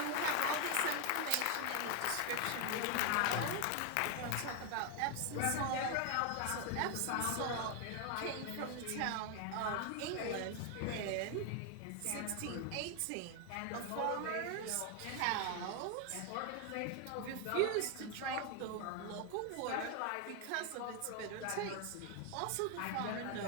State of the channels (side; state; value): both; different; correlation 0.01